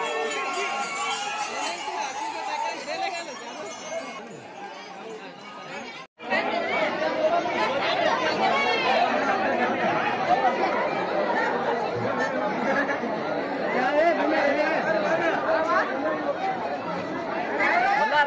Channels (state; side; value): identical; both; correlation 1.00